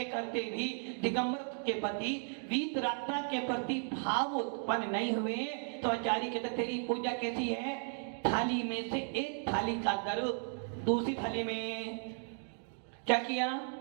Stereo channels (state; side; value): silent; left; 54 dB below the other